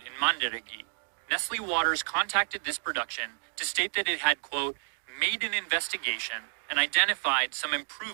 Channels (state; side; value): silent; left; digital silence